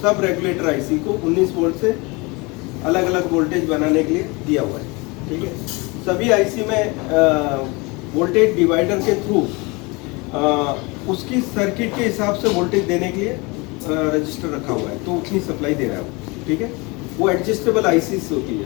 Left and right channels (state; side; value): quieter; right; 26.5 dB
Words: सब रेगुलेटर आईसी को 19 वोल्ट से अलग अलग वोल्टेज बनाने के लिए दिया हुआ है, ठीक है। सभी आईसी में वोल्टेज डिवाइडर के थ्रू उसकी सर्किट के हिसाब से वोल्टेज देने के लिए रजिस्टर रखा हुआ है, तो उतनी सप्लाई दे रहा है वो, ठीक है। वो एडजस्टेबल आईसीस होती है